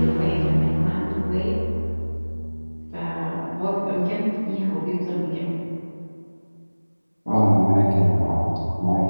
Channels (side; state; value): both; inverted; correlation -1.00